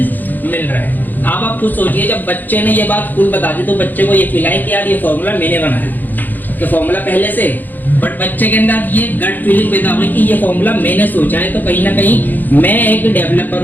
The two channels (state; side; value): late; right; 0.086 ms